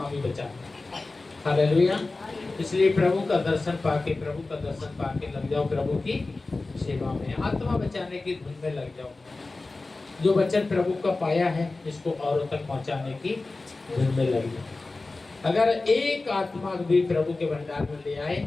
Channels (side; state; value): right; quieter; 3.4 dB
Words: भी बचाता है। हालेलुया। इसलिए प्रभु का दर्शन पाके लग जाओ प्रभु की सेवा में, आत्मा बचाने की धुन में लग जाओ। जो वचन प्रभु का पाया है इसको औरों तक पहुंचाने की धुन में लग जाओ। अगर एक आत्मा भी प्रभु के भंडार में ले आए